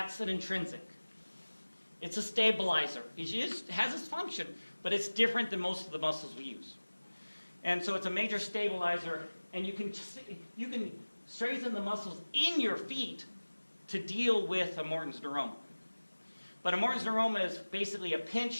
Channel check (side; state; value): both; inverted; correlation -1.00